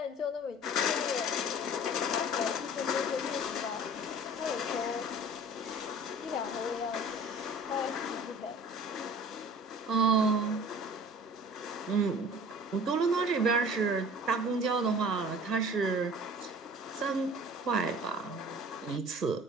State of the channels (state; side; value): normal; both; correlation 0.44